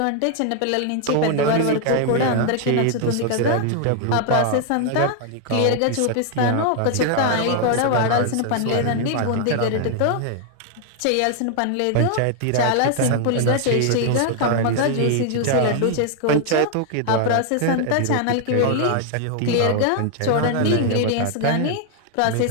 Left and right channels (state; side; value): different; both; correlation 0.00